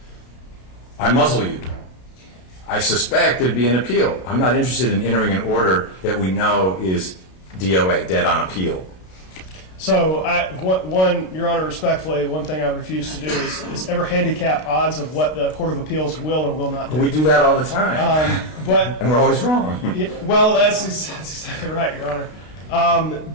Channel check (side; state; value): right; late; 32 ms